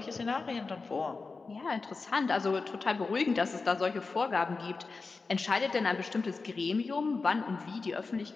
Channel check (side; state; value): right; quieter; 4.1 dB